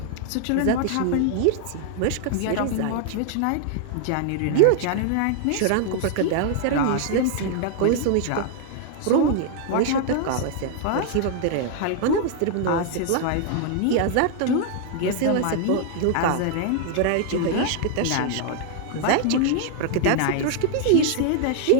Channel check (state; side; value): different; both; correlation 0.00